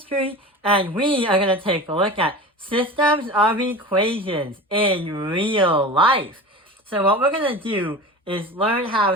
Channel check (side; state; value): both; normal; correlation 0.32